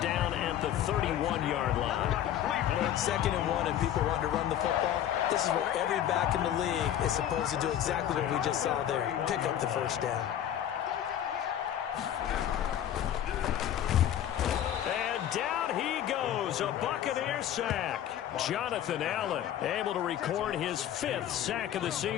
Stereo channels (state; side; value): quieter; right; 10.8 dB